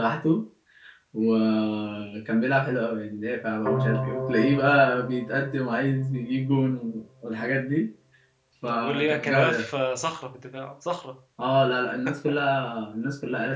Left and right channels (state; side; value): identical; both; correlation 1.00